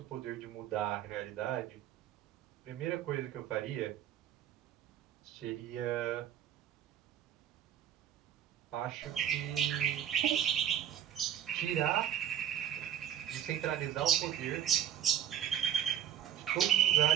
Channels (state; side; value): quieter; left; 10.3 dB